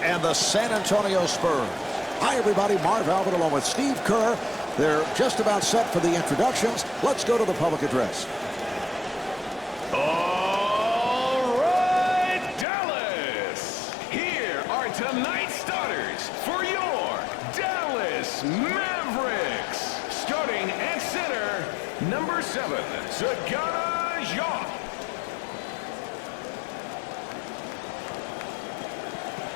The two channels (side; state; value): right; drops out; at 12.7 s